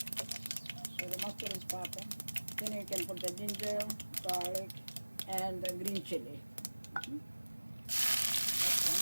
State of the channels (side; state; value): both; inverted; correlation -1.00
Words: So the mustard is popping. Then you can put the ginger, garlic, and the green chili. Mm-hmm. That's